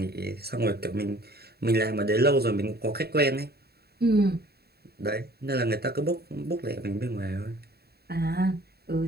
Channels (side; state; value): left; late; 0.46 ms